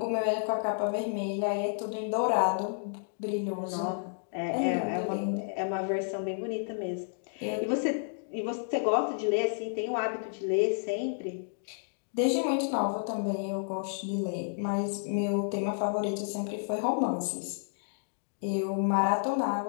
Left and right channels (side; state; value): right; silent; digital silence